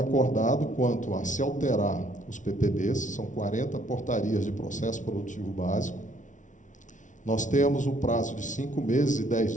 quanto a se alterar os PPBs, são 40 portarias de processo produtivo básico. Nós temos o prazo de 5 meses e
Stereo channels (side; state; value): right; late; 0.37 ms